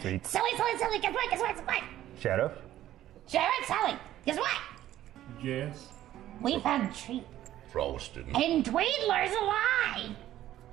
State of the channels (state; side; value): quieter; left; 13.1 dB